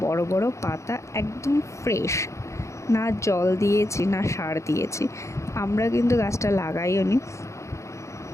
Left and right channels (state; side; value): late; right; 0.14 ms